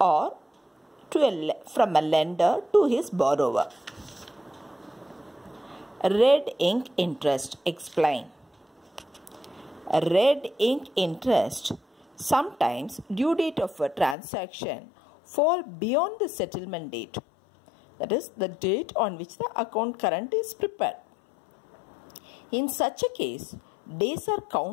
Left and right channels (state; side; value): drops out; right; at 14.2 s